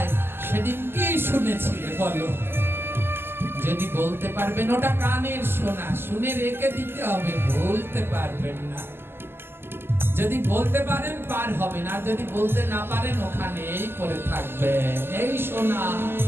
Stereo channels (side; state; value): left; late; 0.11 ms